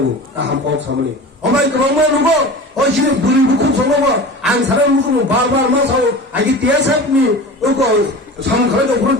나한 법 사모니. 어마이 그런 말 누구? 어시는 물이 묵고 성공어 안 사람 묵고 바바 마사오. 아기 대사님이 어거 상가라도 그런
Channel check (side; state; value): both; normal; correlation 0.34